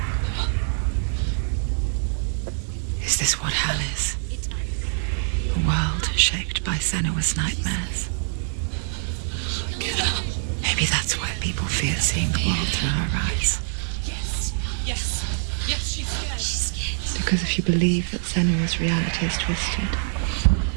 Is this what hell is? A world shaped by Senua's nightmares. Maybe that's why people fear seeing the world through her eyes. Yes, she's scared. Because if you believe that Senua's reality is twisted,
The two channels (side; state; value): left; silent; digital silence